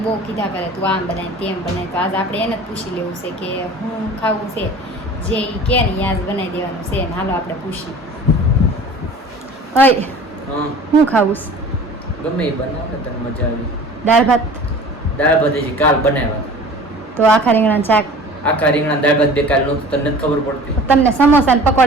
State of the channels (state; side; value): normal; both; correlation 0.43